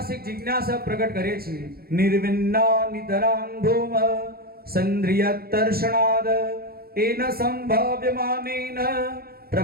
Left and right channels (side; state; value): left; late; 0.44 ms